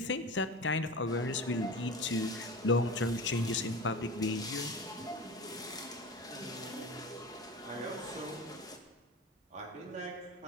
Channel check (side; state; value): both; normal; correlation 0.31